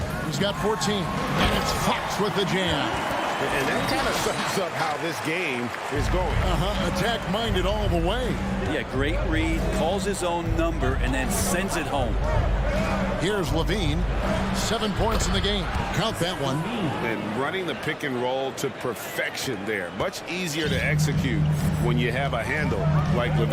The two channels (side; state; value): both; identical; correlation 1.00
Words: He's got 14. And it's Fox with the jam. And that kind of sums up how this game is going. Attack-minded all the way. Yeah, great read. Calls his own number and then sends it home. Here's Levine. 7 points in the game. Count that one. And running the pick and roll to perfection there. Much easier to execute when you have a handle like